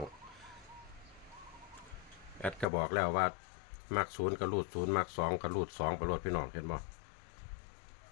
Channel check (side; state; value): right; drops out; at 2.7 s